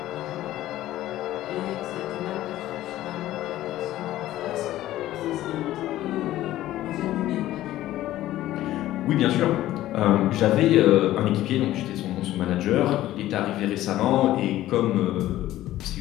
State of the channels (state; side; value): quieter; right; 14.5 dB